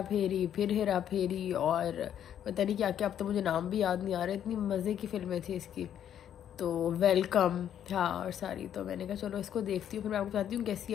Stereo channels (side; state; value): right; quieter; 9.9 dB